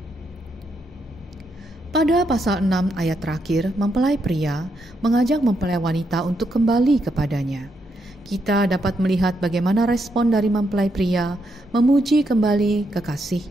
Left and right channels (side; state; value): both; normal; correlation 0.79